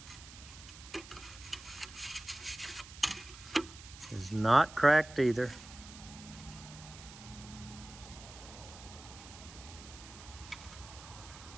is not cracked either.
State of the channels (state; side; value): noise; right; hiss, 16 dB below the sound